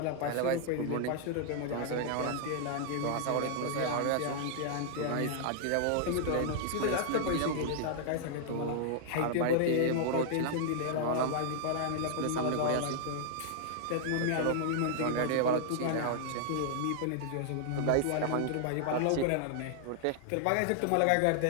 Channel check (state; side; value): different; both; correlation -0.01